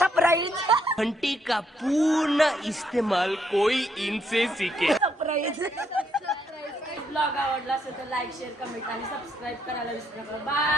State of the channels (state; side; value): normal; both; correlation 0.73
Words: सरप्राईज घंटी का पूर्ण इस्तेमाल कोई इनसे सीखे. सरप्राईज. ब्लॉग आवडला असेल तर लाईक शेअर कमेंट आणि सबस्क्राईब करायला विसरू नका.